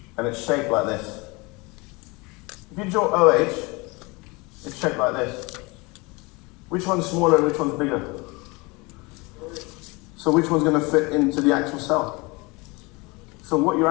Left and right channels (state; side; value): quieter; right; 26.1 dB